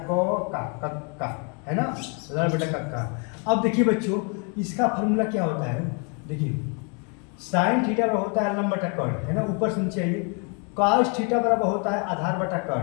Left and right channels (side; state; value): right; quieter; 36.7 dB